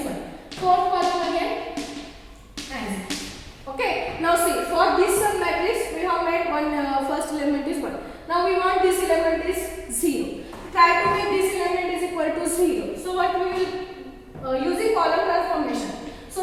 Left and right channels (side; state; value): both; identical; correlation 1.00